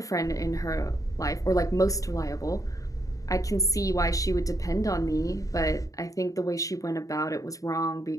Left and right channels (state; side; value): late; right; 0.16 ms